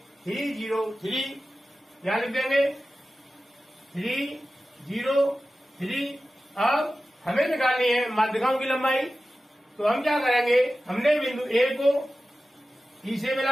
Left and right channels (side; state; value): both; normal; correlation 0.95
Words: 3, 0, 3। क्या लिख देंगे 3, 0, 3। अब हमें निकालनी है माध्यिकाओं की लंबाई, तो हम क्या करेंगे, हमने बिंदु ए को ई से